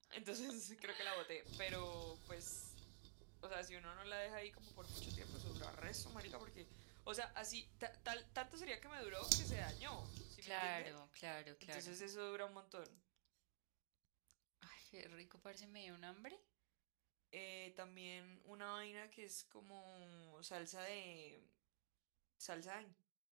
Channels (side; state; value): left; silent; digital silence